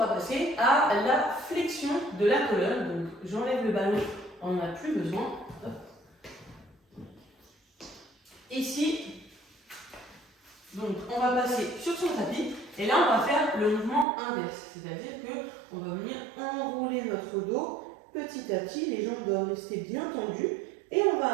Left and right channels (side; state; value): left; drops out; at 14.1 s